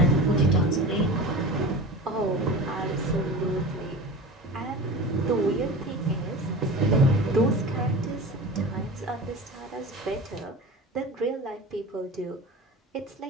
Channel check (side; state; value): both; normal; correlation 0.33